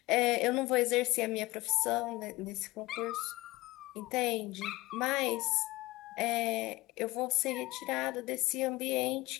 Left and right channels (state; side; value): quieter; right; 19.9 dB